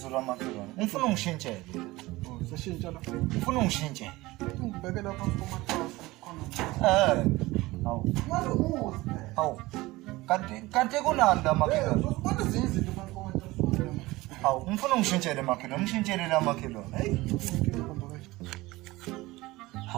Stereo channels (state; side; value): quieter; left; 19.9 dB